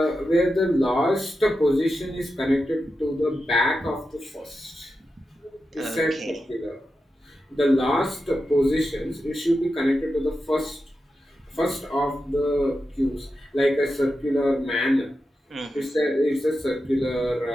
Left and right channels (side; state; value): both; normal; correlation 0.90